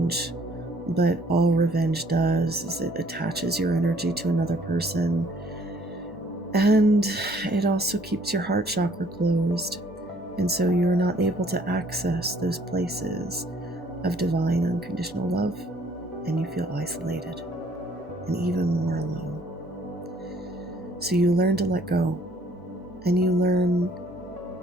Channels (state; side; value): normal; both; correlation 0.60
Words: but all revenge does is it attaches your energy to another person, and it also keeps your heart chakra closed, and so you're not able to access those places of divine unconditional love, and you feel isolated and even more alone. So you learn to let go, and you learn